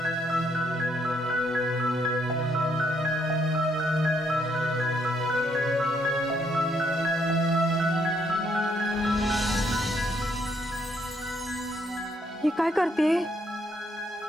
ही काय करते?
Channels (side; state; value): both; normal; correlation 0.72